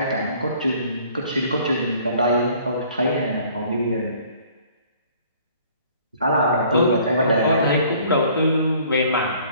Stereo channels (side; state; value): both; inverted; correlation -0.56